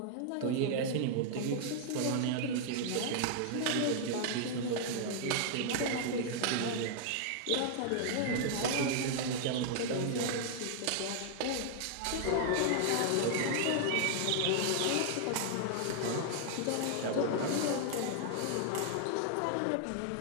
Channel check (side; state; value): both; different; correlation 0.00